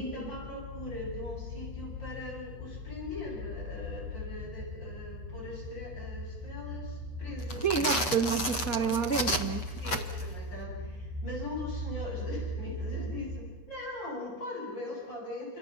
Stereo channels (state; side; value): late; right; 8.2 ms